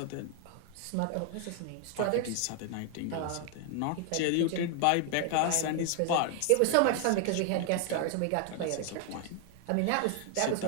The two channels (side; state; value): both; different; correlation 0.00